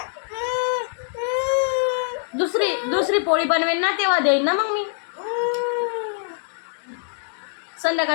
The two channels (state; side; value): silent; right; digital silence